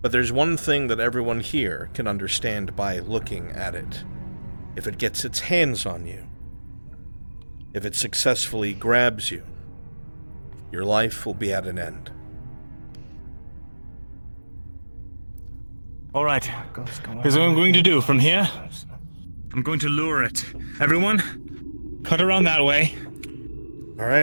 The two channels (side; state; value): both; inverted; correlation -1.00